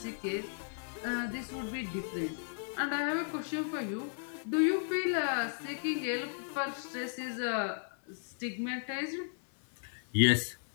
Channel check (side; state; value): right; silent; digital silence